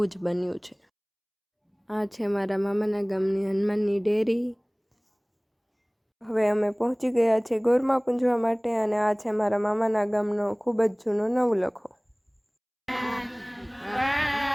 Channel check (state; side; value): identical; both; correlation 1.00